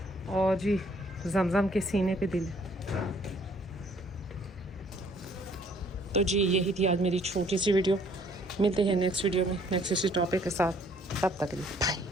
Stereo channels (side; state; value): both; normal; correlation 0.61